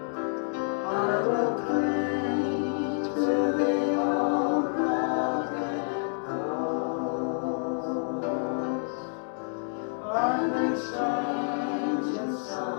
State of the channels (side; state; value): right; silent; 59 dB below the other